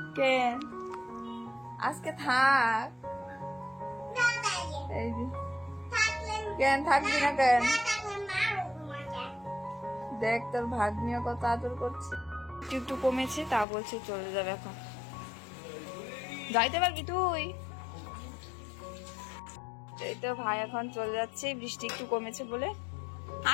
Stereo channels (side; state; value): right; drops out; at 13.7 s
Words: কেন আজকে থাক? কেন থাকবি না কেন? দেখ তোর ভাগ্নিও কত আদর করছে। একটু কমেছে, তা বলছে চলে যাবে এখন। যাইতে পারবি তুই? এই তো ভাই এখন চলে যাচ্ছে, বৃষ্টি একটু কমেছে বলে।